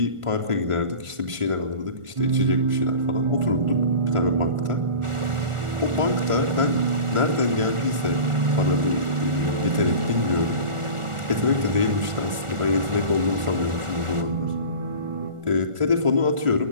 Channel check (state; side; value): late; left; 1.4 ms